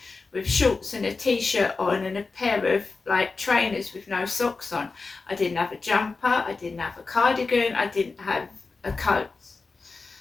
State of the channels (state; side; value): quieter; right; 4.1 dB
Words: with shorts and a t-shirt on and a pair of trainers with no socks on. I didn't have a jumper, I didn't have a cardigan, I didn't have a coat.